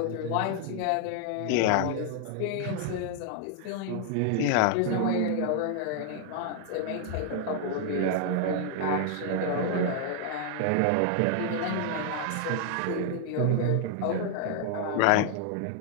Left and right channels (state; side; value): different; both; correlation 0.00